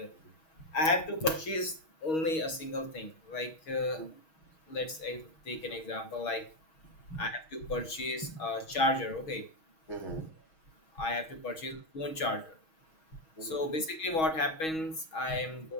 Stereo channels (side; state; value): right; late; 6.3 ms